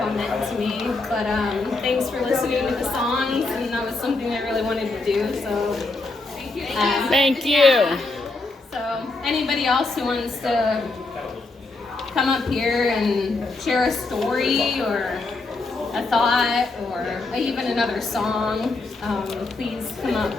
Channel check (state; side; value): quieter; right; 3.4 dB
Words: meant to me, but thanks for listening to the songs, and that was something I really wanted to do, so thank you. Yeah. So anybody else who wants to come up here and share a story or a thought or even another song, please come up